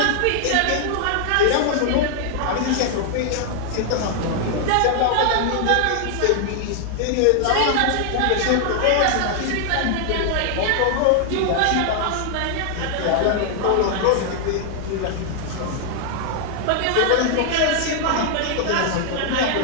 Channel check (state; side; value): different; both; correlation 0.00